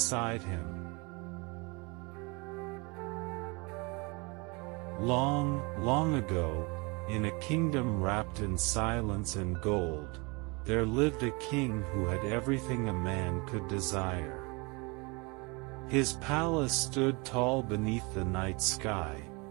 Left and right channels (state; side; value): quieter; left; 28.4 dB